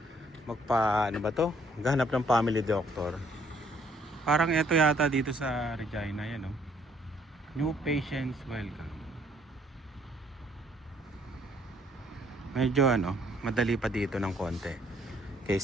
Magpa ano ba 'to? Maghanap ng family doctor. Parang ito yata dito sa Regina, yan oh. New patients welcome. Medyo ano, madali pa dito ng konti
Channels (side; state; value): both; normal; correlation 0.65